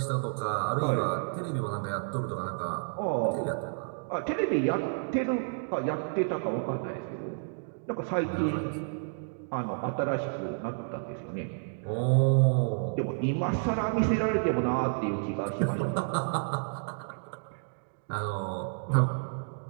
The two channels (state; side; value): silent; left; digital silence